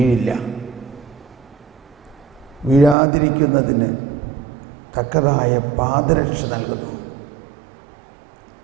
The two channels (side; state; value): left; drops out; at 3.0 s